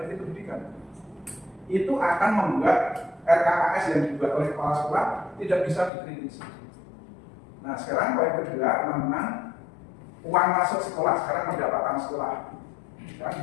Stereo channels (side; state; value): right; drops out; at 5.9 s